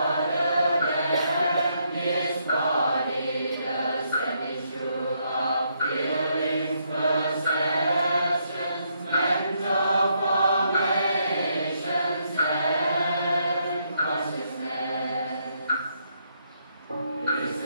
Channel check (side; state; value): both; inverted; correlation -0.75